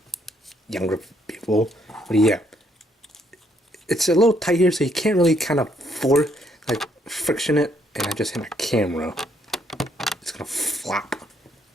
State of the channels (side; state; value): both; normal; correlation 0.71